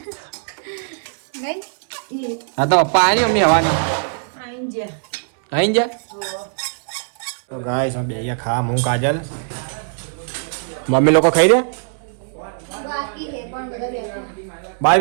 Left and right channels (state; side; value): silent; left; 63 dB below the other